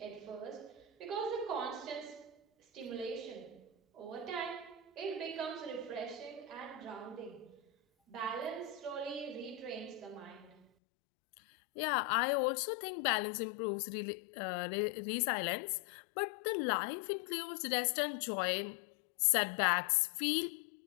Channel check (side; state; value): right; drops out; at 10.7 s